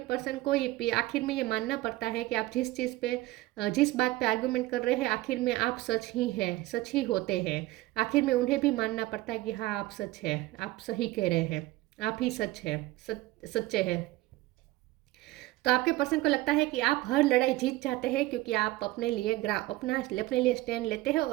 पर्सन को ये आखिर में ये मानना पड़ता है कि आप जिस चीज़ पे जिस बात पे आर्गुमेंट कर रहे हैं आखिर में आप सच ही हैं, सच ही होते हैं। आखिर में उन्हें भी मानना पड़ता है कि हाँ आप सच है, आप सही कह रहे हैं, आप ही सच है, सच्चे हैं। तो आपके पर्सन को लगता है कि आप हर लड़ाई जीत जाते हैं क्योंकि आप अपने लिए स्टैंड लेते हैं,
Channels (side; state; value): left; quieter; 18.1 dB